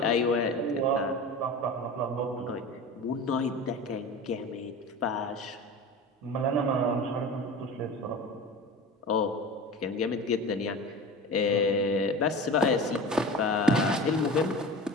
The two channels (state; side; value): normal; both; correlation 0.33